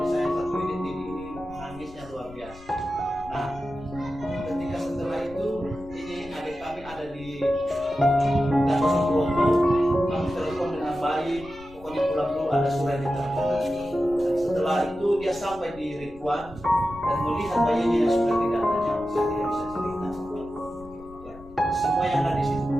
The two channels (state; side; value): noise; left; rumble, 19 dB below the sound